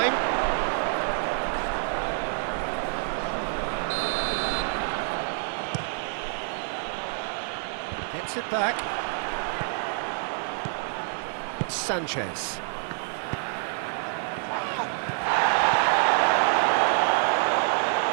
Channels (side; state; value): left; silent; 56 dB below the other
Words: Gets it back. Sanchez.